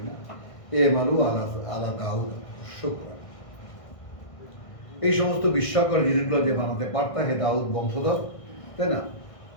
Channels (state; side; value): late; right; 1.6 ms